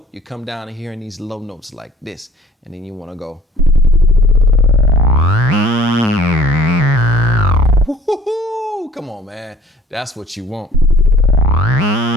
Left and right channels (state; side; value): normal; both; correlation 0.52